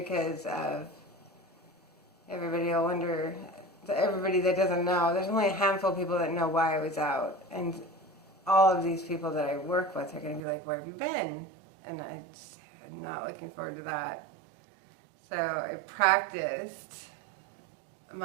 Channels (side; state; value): left; drops out; at 10.4 s